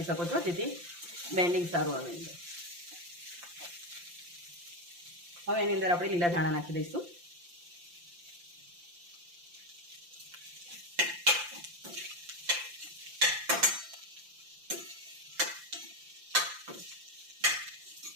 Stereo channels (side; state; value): left; late; 5.8 ms